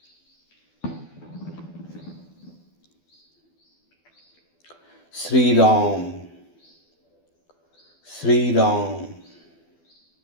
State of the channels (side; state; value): right; late; 12 ms